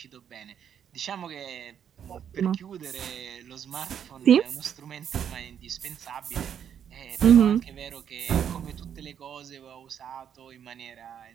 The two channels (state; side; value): quieter; left; 8.7 dB